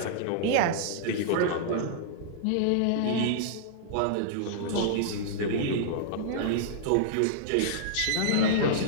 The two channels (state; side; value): different; both; correlation -0.02